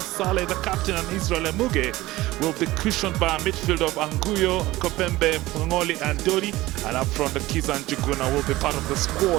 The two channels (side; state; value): left; quieter; 18.0 dB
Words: Saleh, the captain, and Israel Emuge will be cushioned by a midfield of Anguyo, Kopembe, Ngoli, and Dodi. And up front, the Kizan Juguna will be part of the